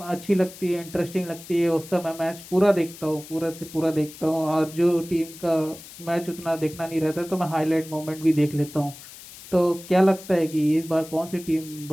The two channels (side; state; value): left; noise; hiss, 17 dB below the sound